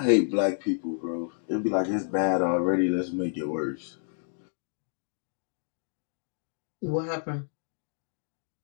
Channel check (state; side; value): silent; right; digital silence